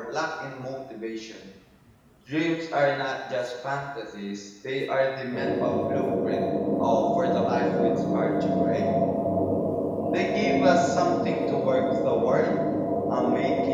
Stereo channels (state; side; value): identical; both; correlation 1.00